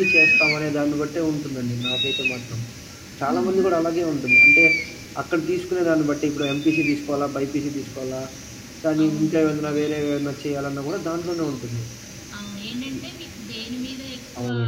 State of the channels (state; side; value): identical; both; correlation 1.00